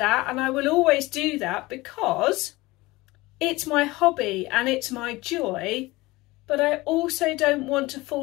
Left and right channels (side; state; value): right; quieter; 20.8 dB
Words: and I will always do that because it's my hobby and it's my joy, but I also don't want to